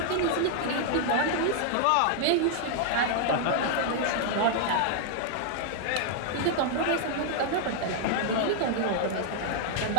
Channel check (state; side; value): different; both; correlation 0.00